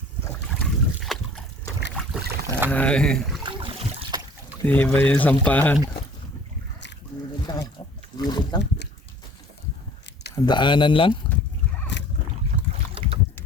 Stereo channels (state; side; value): normal; both; correlation 0.50